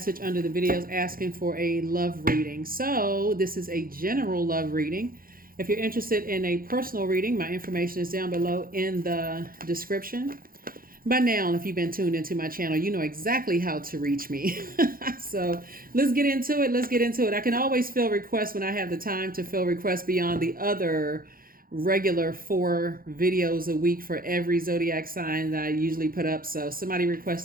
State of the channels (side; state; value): left; late; 0.42 ms